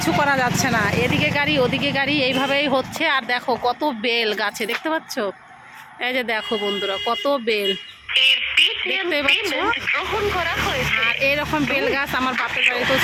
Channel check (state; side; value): identical; both; correlation 1.00